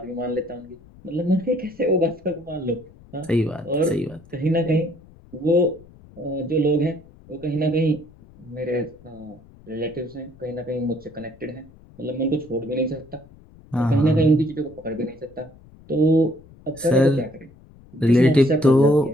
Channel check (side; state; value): left; noise; rumble, 24 dB below the sound